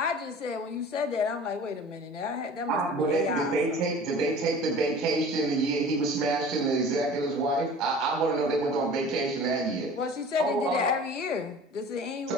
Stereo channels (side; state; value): both; normal; correlation 0.42